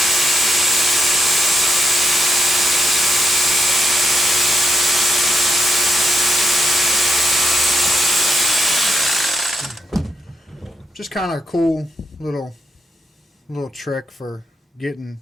Just kind of a cool little trick for getting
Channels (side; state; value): both; normal; correlation 0.81